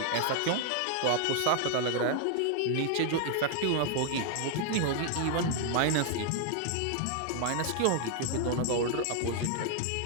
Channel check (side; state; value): both; different; correlation 0.00